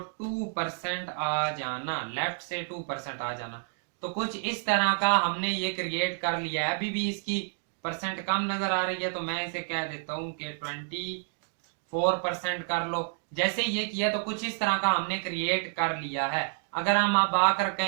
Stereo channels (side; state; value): left; silent; 58 dB below the other